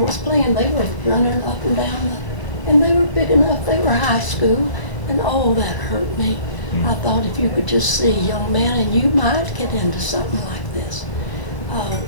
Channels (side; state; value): right; late; 1.0 ms